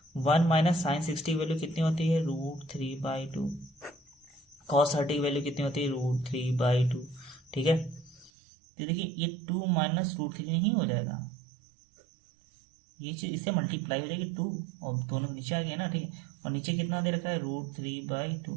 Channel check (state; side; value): drops out; left; at 8.3 s